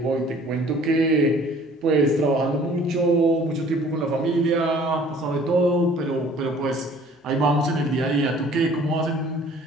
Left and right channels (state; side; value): normal; both; correlation 0.53